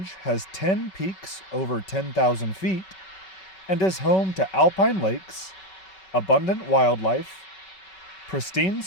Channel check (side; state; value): right; late; 5.3 ms